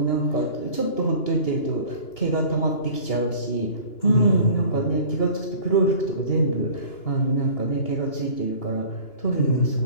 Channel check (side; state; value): right; late; 2.9 ms